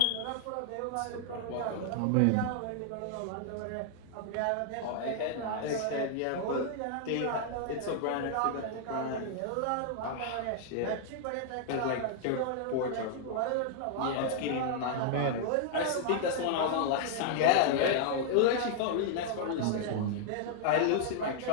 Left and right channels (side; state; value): both; different; correlation -0.01